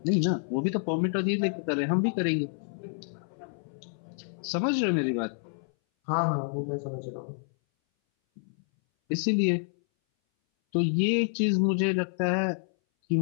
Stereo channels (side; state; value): right; silent; 59 dB below the other